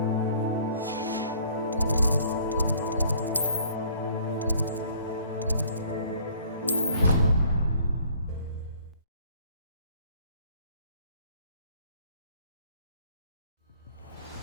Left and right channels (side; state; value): both; inverted; correlation -0.56